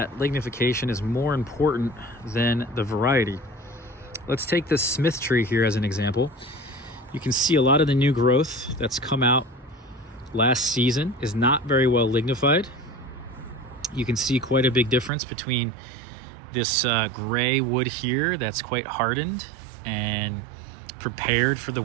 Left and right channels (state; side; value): drops out; left; at 15.1 s